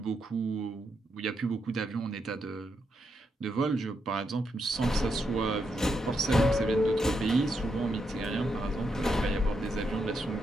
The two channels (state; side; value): normal; both; correlation 0.81